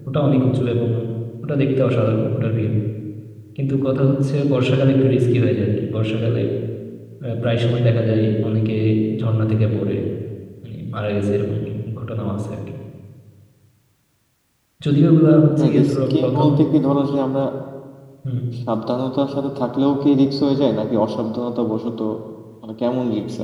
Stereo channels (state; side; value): identical; both; correlation 1.00